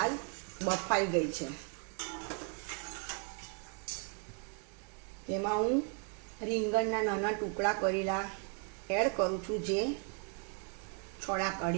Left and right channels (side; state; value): left; quieter; 37.2 dB